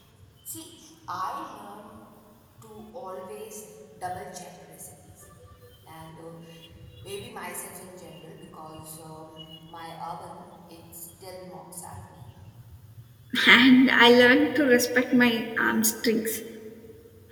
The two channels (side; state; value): both; identical; correlation 1.00